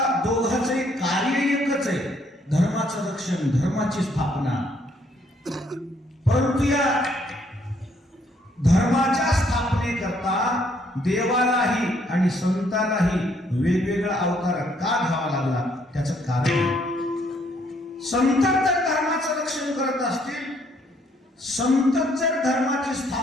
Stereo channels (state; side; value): normal; both; correlation 0.68